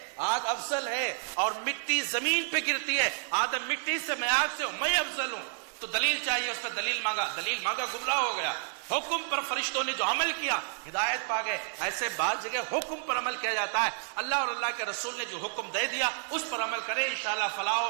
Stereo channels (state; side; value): silent; left; digital silence